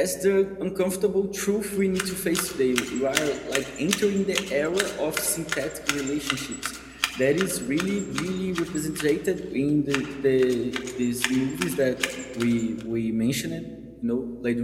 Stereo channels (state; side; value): identical; both; correlation 1.00